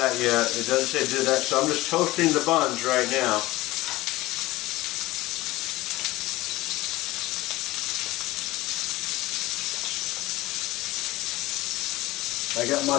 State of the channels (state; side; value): quieter; right; 18.4 dB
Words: yet. It doesn't say do that, so I'm just toasting the buns right now. I got